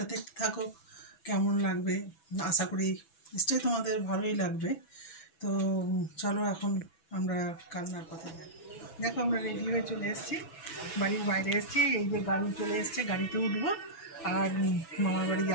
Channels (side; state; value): right; late; 6.1 ms